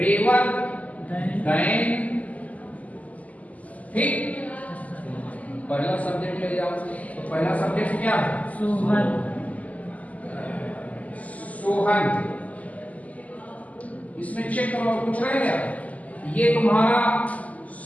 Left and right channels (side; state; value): right; late; 0.073 ms